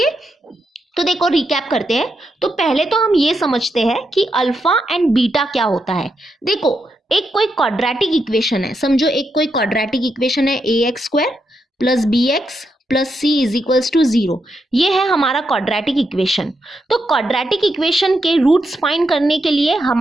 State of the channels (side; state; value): both; normal; correlation 0.83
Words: तो देखो रिकैप करते हैं। तो पहले तो हम ये समझते हैं कि अल्फा एंड बीटा क्या होता है। देखो, एक कोई क्वाड्रेटिक इक्वेशन है, समझो एक कोई क्वाड्रेटिक इक्वेशन है ax² plus bx plus c is equals to 0। ये है हमारा क्वाड्रेटिक इक्वेशन। तो क्वाड्रेटिक इक्वेशन के रूट्स फाइंड करने के लिए